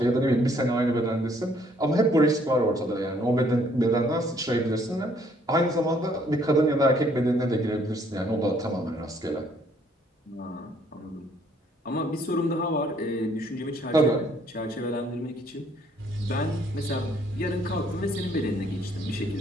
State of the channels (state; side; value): normal; both; correlation 0.64